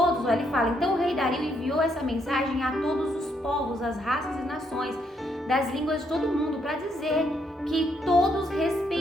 ele fala, então o rei Dario enviou essa mensagem a todos os povos, as raças e nações, das línguas de todo mundo, para dizer que todos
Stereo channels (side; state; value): both; normal; correlation 0.74